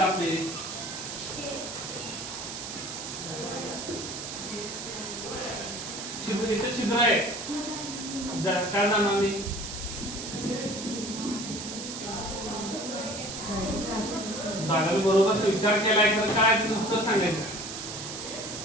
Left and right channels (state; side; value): noise; right; hiss, 7 dB below the sound